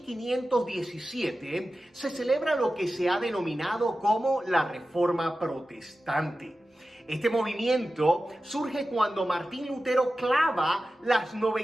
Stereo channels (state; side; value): normal; both; correlation 0.94